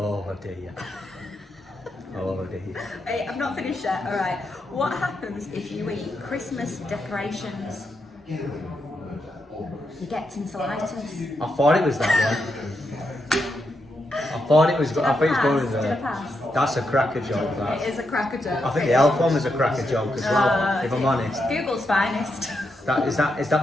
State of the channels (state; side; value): normal; both; correlation 0.83